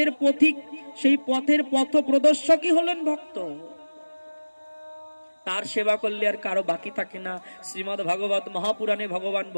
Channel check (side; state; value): both; inverted; correlation -1.00